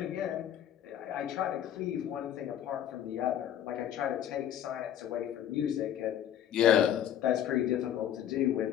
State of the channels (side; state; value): right; quieter; 10.5 dB